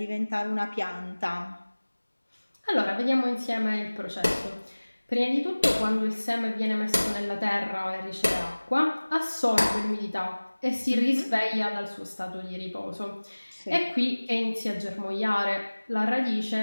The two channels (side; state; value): both; inverted; correlation -1.00